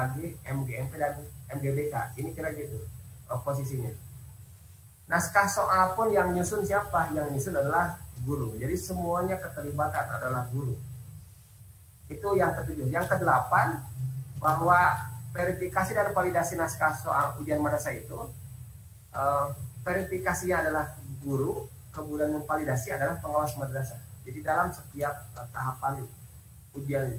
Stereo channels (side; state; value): both; identical; correlation 1.00